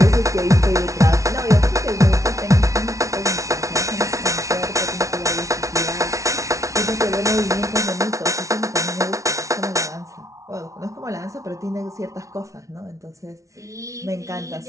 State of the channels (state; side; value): late; left; 0.15 ms